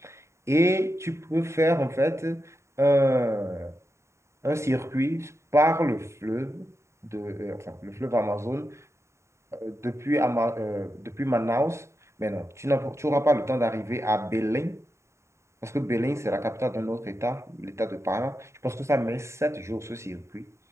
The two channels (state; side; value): late; left; 0.14 ms